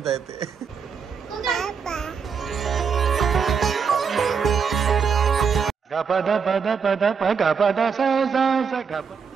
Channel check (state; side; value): quieter; left; 6.1 dB